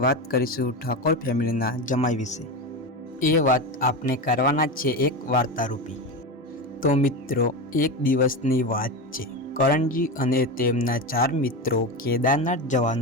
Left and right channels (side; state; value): both; normal; correlation 0.20